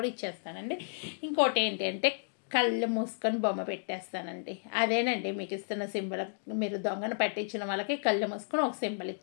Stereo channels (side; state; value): right; silent; digital silence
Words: ఇచ్చేస్తానండి. ఇంకోటి ఏంటి అంటే కళ్ళు మూసుకొని బొమ్మ పెట్టేస్తానండి. అదేనండి మీకు ఇస్తున్న సింబల్. మీరు దొంగను పట్టించిన వాళ్ళకి కళ్ళు మూసుకొని ఒక సింబల్